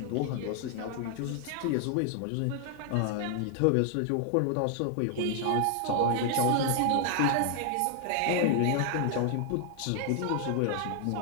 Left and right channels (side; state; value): both; different; correlation 0.00